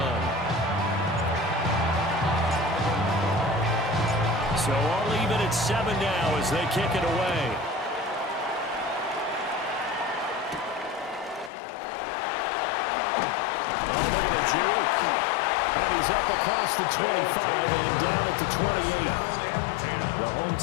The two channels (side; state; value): right; drops out; at 11.5 s